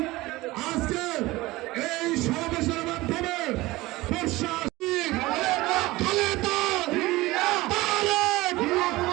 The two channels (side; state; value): left; quieter; 19.6 dB